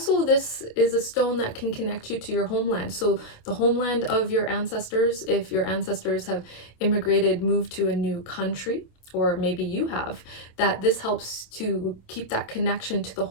this is a stone that can connect you to your homeland. So the homeland of your ancestors, if your ancestors have immigrated, moved to a new country, or maybe you have, that this helps to keep that connection to the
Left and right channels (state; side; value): late; right; 27 ms